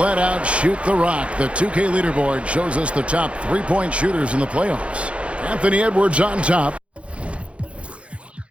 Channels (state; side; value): late; left; 0.061 ms